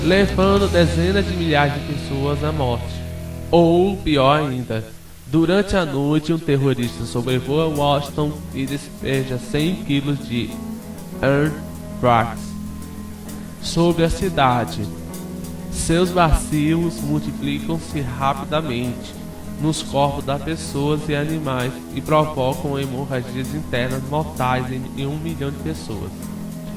levando dezenas de milhares de pessoas à morte. Ou, pior ainda, durante a noite um terrorista sobrevoa Washington e despeja 100 kg de anthrax sobre a cidade. Seus bacilos multiplicam-se rapidamente nos corpos das pessoas e animais e provocam hemorragias internas mortais em 1 milhão de pessoas.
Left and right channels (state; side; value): identical; both; correlation 1.00